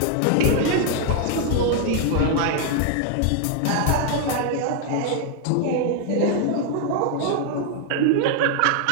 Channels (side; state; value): both; different; correlation 0.00